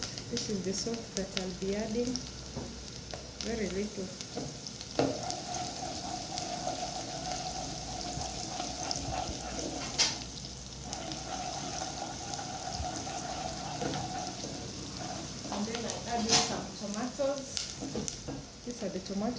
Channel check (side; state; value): both; identical; correlation 1.00